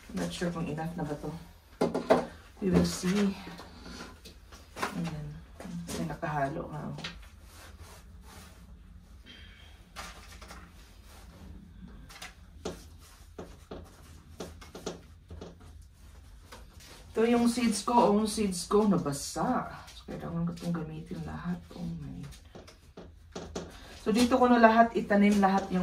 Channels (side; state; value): both; identical; correlation 1.00